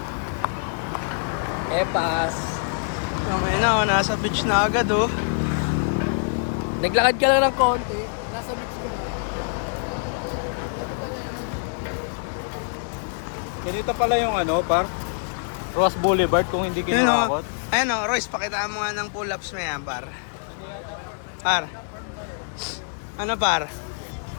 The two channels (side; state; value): right; silent; digital silence